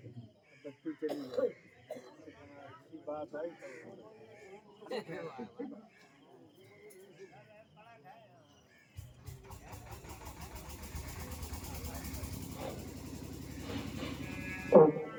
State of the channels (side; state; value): both; identical; correlation 1.00